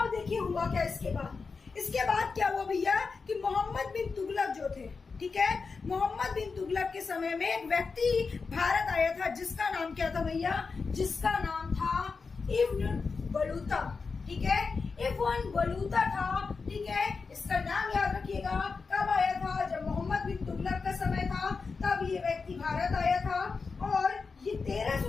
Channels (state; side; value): quieter; right; 4.7 dB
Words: देखिए हुआ क्या इसके बाद। इसके बाद क्या हुआ भैया कि मोहम्मद बिन तुगलक जो थे, ठीक है, मोहम्मद बिन तुगलक के समय में एक व्यक्ति भारत आया था जिसका नाम क्या था भैया? जिसका नाम था इब्न बलूता, ठीक है। इब्न बलूता था, ठीक है। इसका नाम याद रखिएगा। कब आया था? जब मोहम्मद बिन तुगलक का समय था, तब ये व्यक्ति भारत आया था। और ये